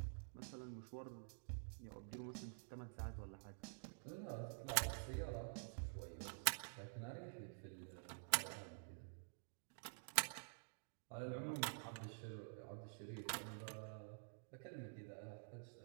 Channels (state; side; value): silent; left; digital silence